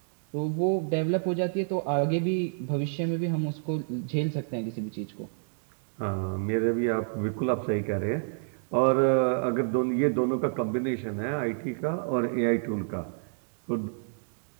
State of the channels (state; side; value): silent; left; digital silence